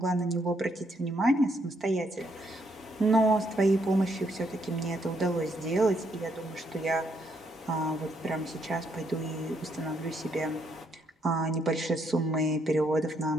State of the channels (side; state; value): both; normal; correlation 0.74